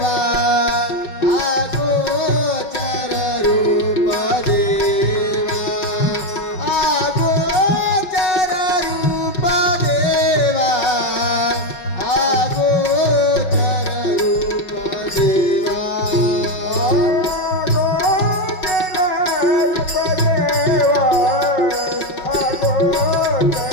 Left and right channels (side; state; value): right; late; 5.4 ms